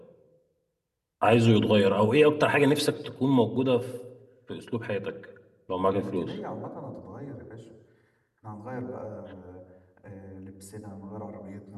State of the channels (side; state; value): both; identical; correlation 1.00